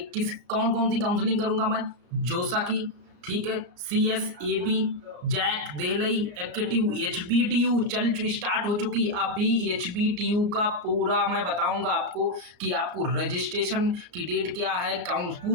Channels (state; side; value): late; left; 33 ms